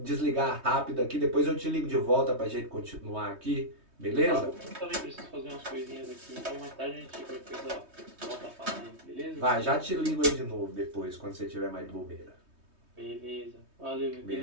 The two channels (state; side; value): late; left; 3.2 ms